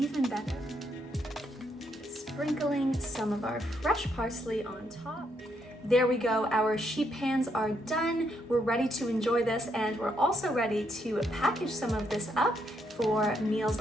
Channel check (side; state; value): both; normal; correlation 0.76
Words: better. Sprinkling some of our fresh parsley on top. There we go. Our sheet pans are done. We're ready to enjoy this, and we're also ready to package some of this up for